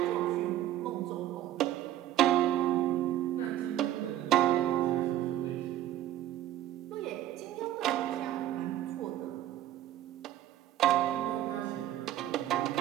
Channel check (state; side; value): quieter; left; 12.9 dB